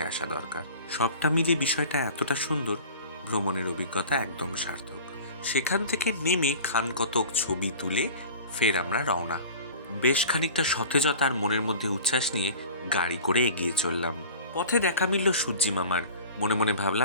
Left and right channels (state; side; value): inverted; both; correlation -0.40